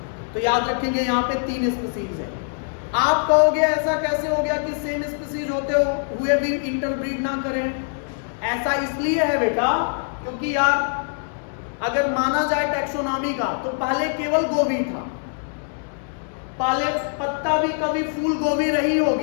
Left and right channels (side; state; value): right; silent; digital silence